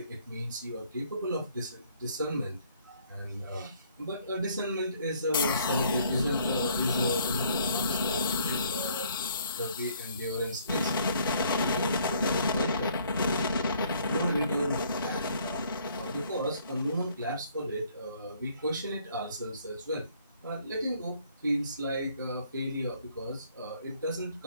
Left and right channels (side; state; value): both; inverted; correlation -0.63